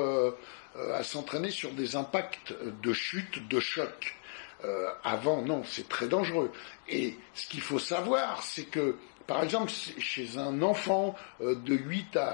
à s'entraîner sur des impacts de chute, de choc. Avant, non, c'est très dangereux. Et ce qu'il faut savoir, c'est que, par exemple, chez un enfant de 8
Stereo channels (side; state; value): right; silent; digital silence